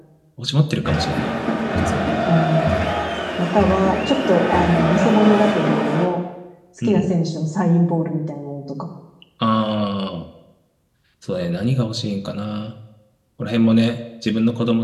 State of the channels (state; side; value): identical; both; correlation 1.00